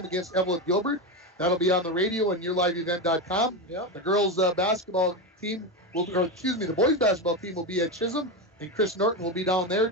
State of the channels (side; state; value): both; normal; correlation 0.14